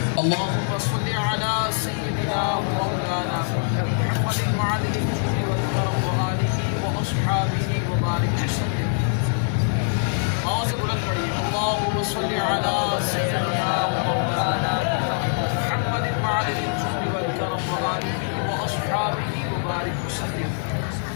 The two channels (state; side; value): silent; right; digital silence